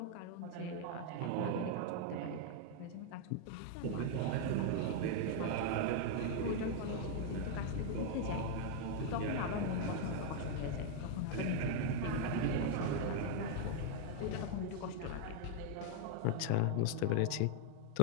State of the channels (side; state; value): both; different; correlation 0.00